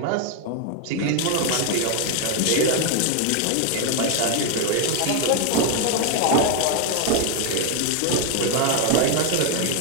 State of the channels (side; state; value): both; different; correlation 0.01